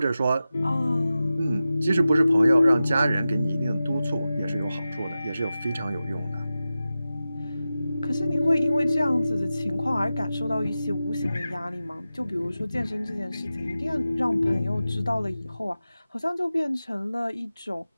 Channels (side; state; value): both; inverted; correlation -0.94